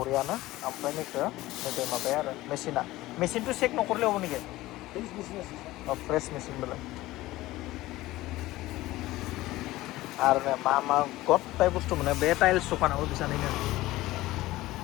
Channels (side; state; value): right; quieter; 17.6 dB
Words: ओमफ्राय नैखौ नैबे माबाया आरो मेसिनथ' चेक न'खरलेयाव नेকি फ्रेश मेसिन बेलाय आरो मा गथाय बुस्थु मोनो बे टाइल्स दखानाव बिसानैनो